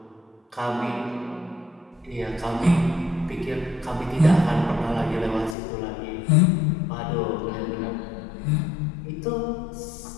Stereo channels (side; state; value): right; drops out; at 5.6 s